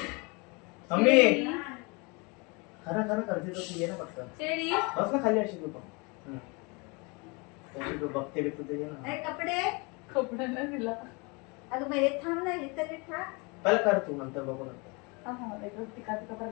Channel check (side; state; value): right; quieter; 29.1 dB